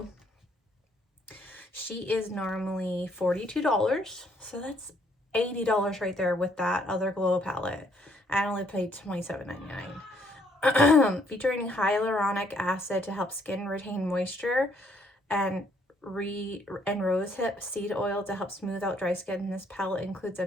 she is normally $42. So that's $80 right there with that other glow palette. I only paid $27.99. Featuring hyaluronic acid to help skin retain moisture, and rosehip seed oil to help smooth out dry skin. This palette includes a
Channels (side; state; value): both; normal; correlation 0.68